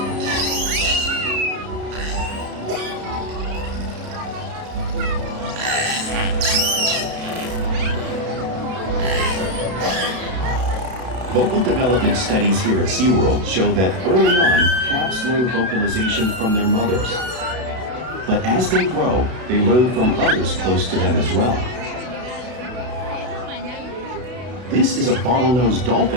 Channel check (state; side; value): late; left; 33 ms